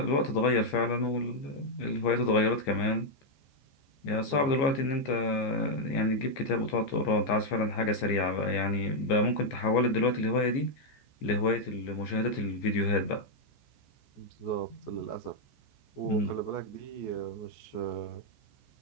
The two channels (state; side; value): late; right; 14 ms